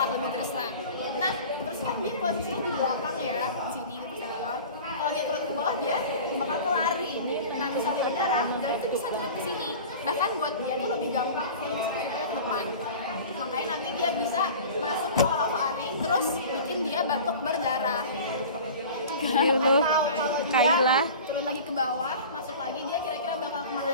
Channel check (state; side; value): inverted; both; correlation -0.38